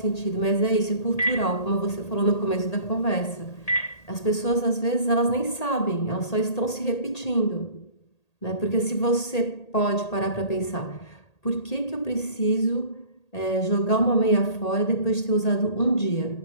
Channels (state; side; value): late; right; 1.8 ms